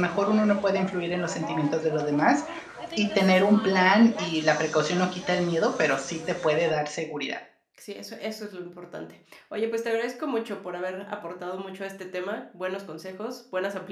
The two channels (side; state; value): both; identical; correlation 1.00